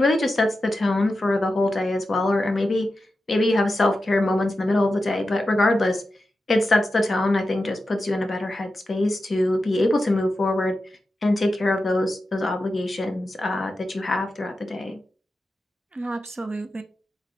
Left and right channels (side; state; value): both; normal; correlation 0.91